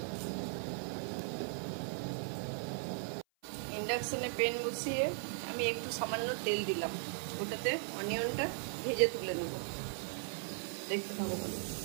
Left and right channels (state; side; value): silent; left; 52 dB below the other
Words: ইন্ডাকশনে প্যান বসিয়ে আমি একটু সামান্য তেল দিলাম, ওটাতে অনিয়নটা ভেজে তুলে নেব। দেখতে থাকো বলো।